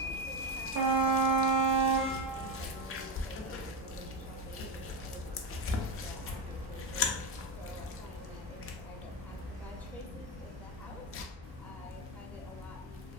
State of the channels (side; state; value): both; normal; correlation 0.14